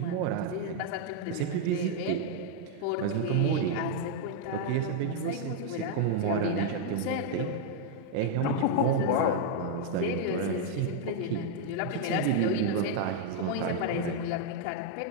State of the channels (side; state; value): both; different; correlation 0.00